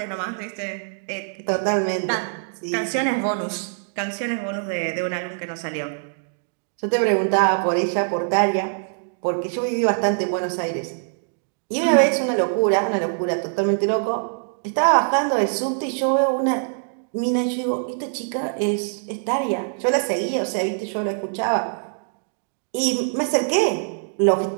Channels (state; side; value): silent; left; digital silence